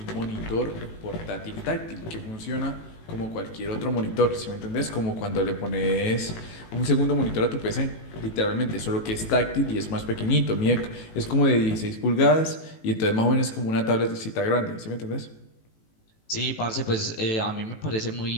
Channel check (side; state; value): right; late; 18 ms